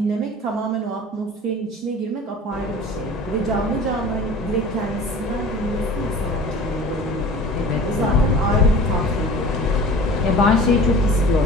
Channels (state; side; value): normal; both; correlation 0.41